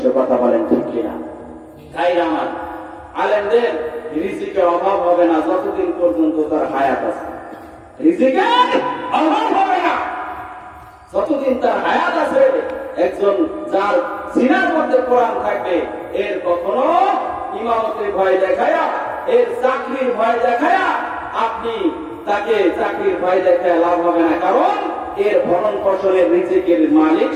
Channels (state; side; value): identical; both; correlation 1.00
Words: কথা বলেন ঠিক কিনা? তাই আমার আলেমদের রিজিকের অভাব হবে না যতদিন পর্যন্ত তার হায়াত আছে। রিজিকের অভাব হবে না যতদিন তার হায়াত আছে। একজন যার সিনার মধ্যে কোরআন থাকবে, এর কখনো ইমামতের ভয় দেখায়া, এর চাকরির ভয় দেখায়া আপনি তাকে চাকরির ভয় দেখায় লাভ হবে না, কারণ এর ভরণ পোষণের রিজিকের মালিক